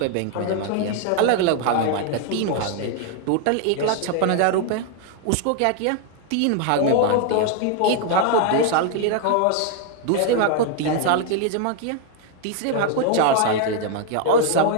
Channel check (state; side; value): different; both; correlation 0.00